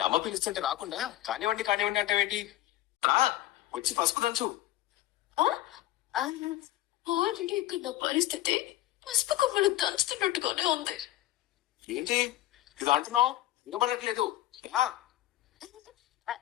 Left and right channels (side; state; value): right; quieter; 15.2 dB